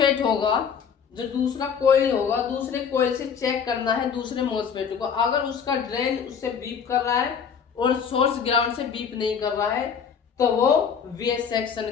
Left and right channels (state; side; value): quieter; right; 6.9 dB